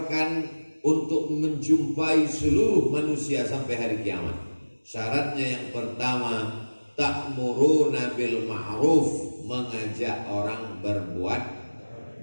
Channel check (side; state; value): both; inverted; correlation -1.00